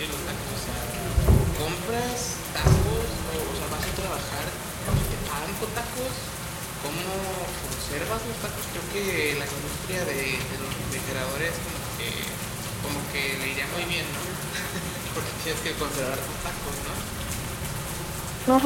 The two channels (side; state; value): both; identical; correlation 1.00